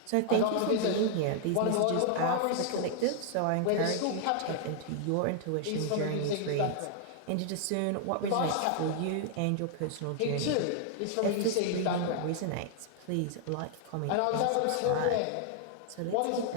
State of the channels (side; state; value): both; different; correlation 0.00